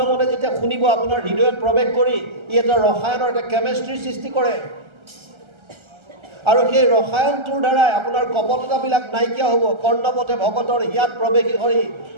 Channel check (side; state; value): left; late; 1.3 ms